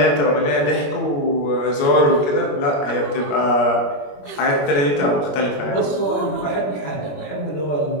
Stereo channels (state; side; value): late; right; 21 ms